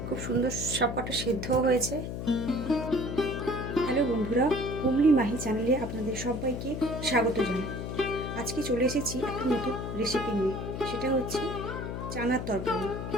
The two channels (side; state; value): left; noise; hum, 5 dB below the sound